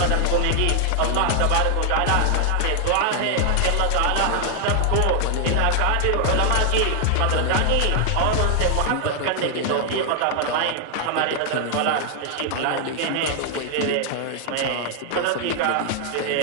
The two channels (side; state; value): both; different; correlation 0.00